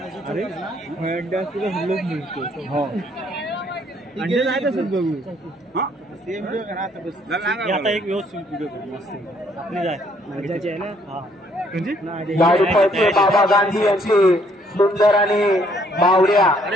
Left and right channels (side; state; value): both; normal; correlation 0.66